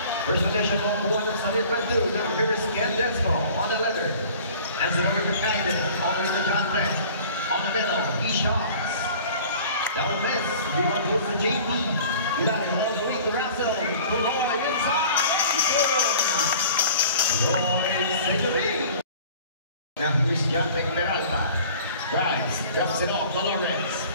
First position on the one Sunday Brendu. Now here's Candesco on the leather. Hands it over to Captain. All the way to John Beck. On the middle, he shots. That will miss. We want to to JP. You got it all the way to Russell. To Lloyd inside. Lloyd Century. Now here's John Beck Peralta. Drives, drops it off to Lawrence.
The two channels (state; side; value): inverted; both; correlation -0.47